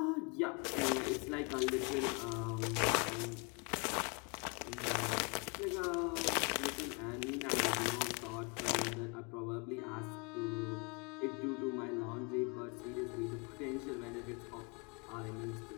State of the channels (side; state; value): right; quieter; 33.1 dB